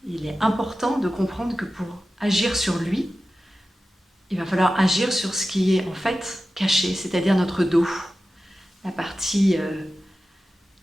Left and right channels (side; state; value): both; normal; correlation 0.94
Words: Il est important de comprendre que pour agir sur lui, il va falloir agir sur ce qui est en fait caché, c'est-à-dire notre dos, la partie